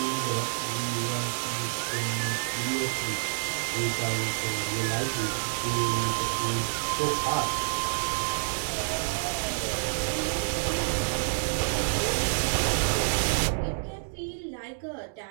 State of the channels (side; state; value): left; silent; digital silence